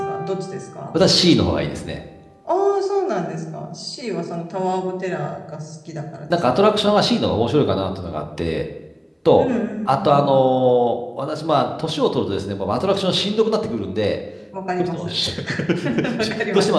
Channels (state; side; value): identical; both; correlation 1.00